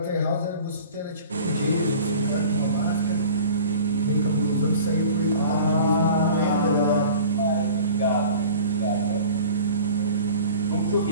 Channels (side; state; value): both; inverted; correlation -0.42